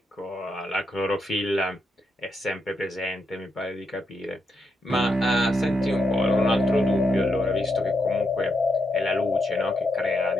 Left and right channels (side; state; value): both; normal; correlation 0.81